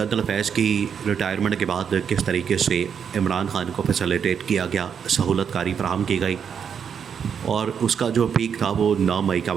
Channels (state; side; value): quieter; left; 7.4 dB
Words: فیض کی ریٹائرمنٹ کے بعد کس طریقے سے عمران خان کو فیسیلیٹیٹ کیا گیا، سہولت کاری فراہم کی گئی، اور اس کا جو پیک تھا وہ 9 مئی کا